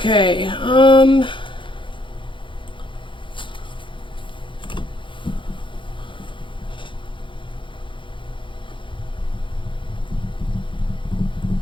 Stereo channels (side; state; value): right; late; 0.24 ms